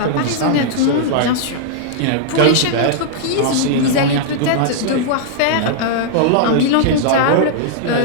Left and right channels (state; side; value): different; both; correlation -0.01